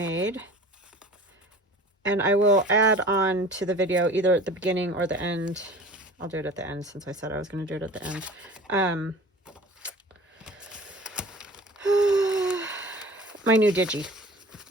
and I will add on to the video either at the beginning or the end. I'll do it at the end since I said I was going to do it at the end. My new digi,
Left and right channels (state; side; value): normal; both; correlation 0.42